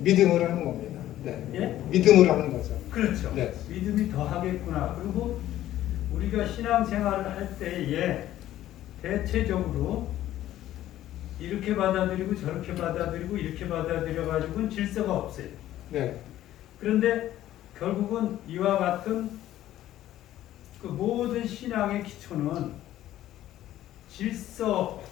하는 겁니다. 네. 예? 믿음을 하는 거죠. 그렇죠. 네. 믿음이 더하겠구나. 그리고 우리가 신앙생활을 할 때에 대체적으로 이렇게 받아들이고 저렇게 받아들이고 이렇게 받아들여가지고는 질서가 없어요. 네. 그런데 결국은 이와 같은 그 모든 신앙의 기초는 질서를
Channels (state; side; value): quieter; right; 13.4 dB